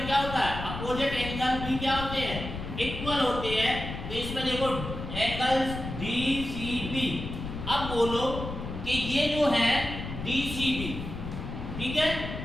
क्या होता है, अपोजिट एंगल भी क्या होते हैं, इक्वल होते हैं। तो इसमें देखो एंगल्स DCB। अब बोलो कि ये जो है DCB, ठीक है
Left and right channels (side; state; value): left; noise; rumble, 7 dB below the sound